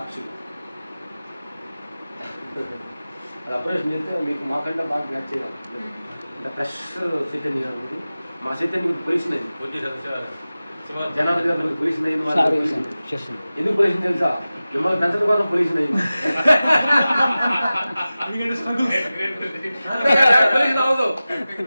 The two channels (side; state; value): both; inverted; correlation -0.96